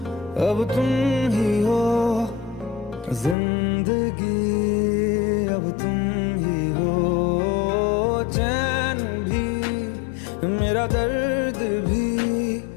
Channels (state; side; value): drops out; right; at 3.4 s